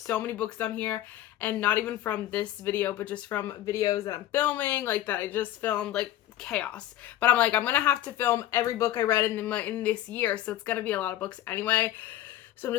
many books on here, and not even from this video, but just from videos that I'm filming, like that I just filmed, like chaos. But I'm like, I'm gonna have to film every book I read in this year, so it's gonna be a lot of books anyway. So I'm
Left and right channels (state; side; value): quieter; right; 13.5 dB